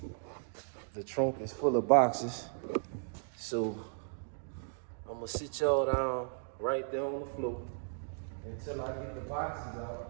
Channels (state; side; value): silent; left; digital silence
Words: The trunk is full of boxes. So I'm gonna sit y'all down right there on the floor until I get the boxes